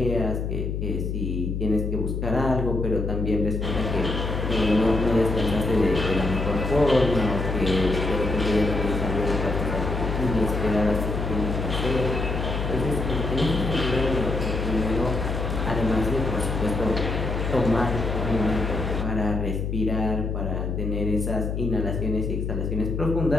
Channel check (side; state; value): left; noise; hum, 2 dB below the sound